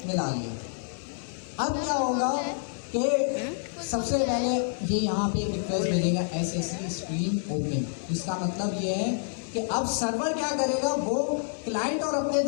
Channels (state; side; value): silent; right; digital silence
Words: मिला लिया। अब क्या होगा कि सबसे पहले ये यहाँ पे रिक्वेस्ट भेजेगा SSE स्ट्रीम ओपन। इसका मतलब ये है कि अब सर्वर क्या करेगा? वो क्लाइंट और अपने